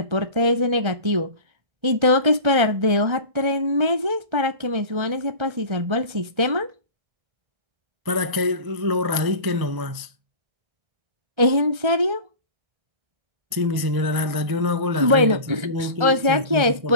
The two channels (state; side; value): late; left; 1.3 ms